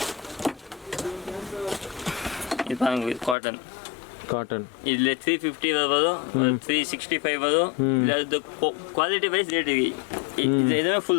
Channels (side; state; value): right; drops out; at 3.4 s